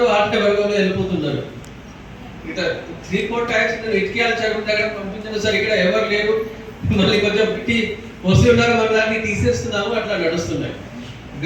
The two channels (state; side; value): identical; both; correlation 1.00